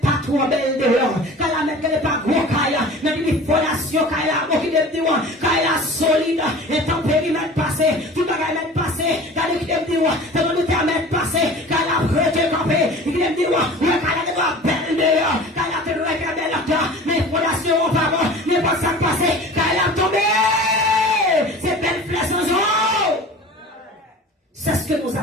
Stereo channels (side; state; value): both; normal; correlation 0.40